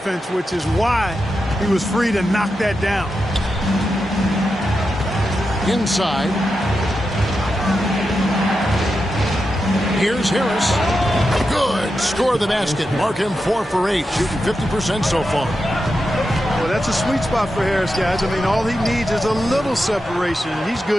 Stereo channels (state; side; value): normal; both; correlation 0.88